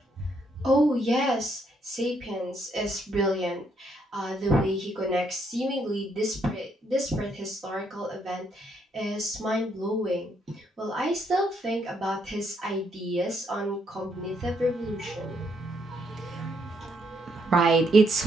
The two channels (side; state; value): both; normal; correlation 0.74